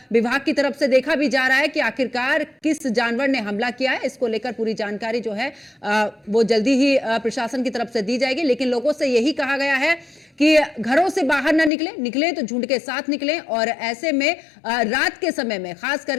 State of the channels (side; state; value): right; drops out; at 11.7 s